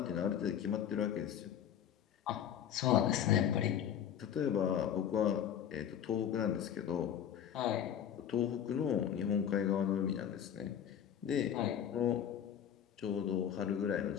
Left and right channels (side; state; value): right; quieter; 9.4 dB